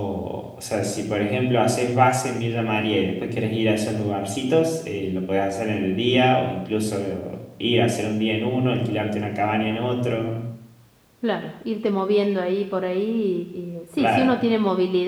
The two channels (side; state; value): both; identical; correlation 1.00